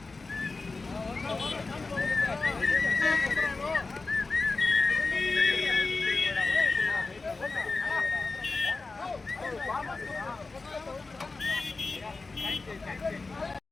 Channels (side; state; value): right; quieter; 3.8 dB